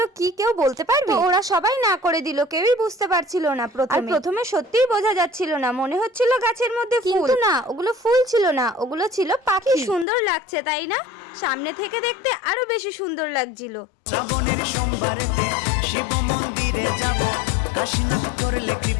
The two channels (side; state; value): right; drops out; at 10.1 s